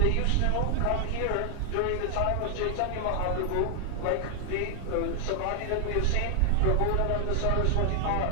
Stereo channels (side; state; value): both; different; correlation 0.00